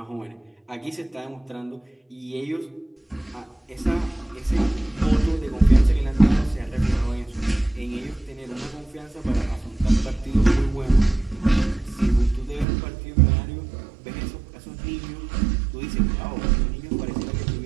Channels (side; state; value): left; drops out; at 12.7 s